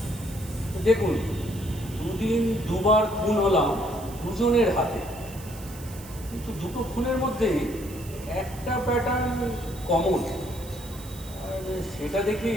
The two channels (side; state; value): right; noise; hiss, 17 dB below the sound